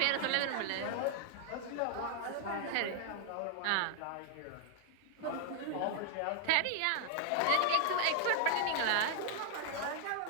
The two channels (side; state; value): both; different; correlation 0.00